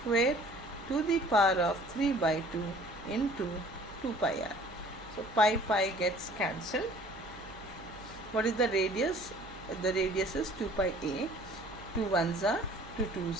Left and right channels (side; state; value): both; normal; correlation 0.52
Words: to the power of 3 by 2 into 2 pi r. So pi gets cancelled. What is the radius? The radius is 2 pi a. 2 ones are 2